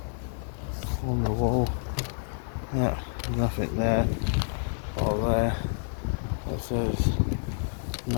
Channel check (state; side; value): silent; right; digital silence